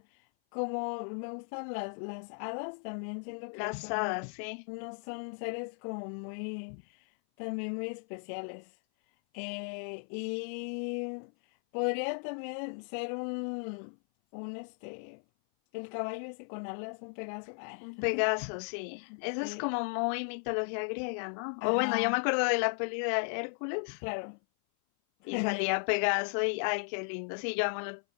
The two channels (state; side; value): silent; right; 54 dB below the other